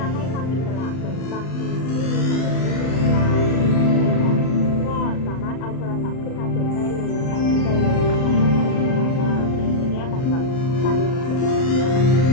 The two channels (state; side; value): late; right; 39 ms